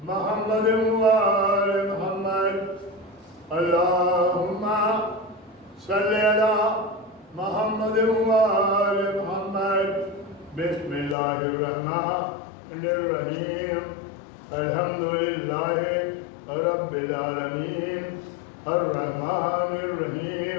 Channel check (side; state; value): right; drops out; at 11.2 s